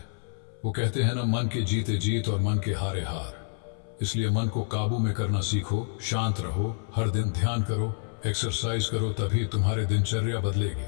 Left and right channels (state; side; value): silent; right; 59 dB below the other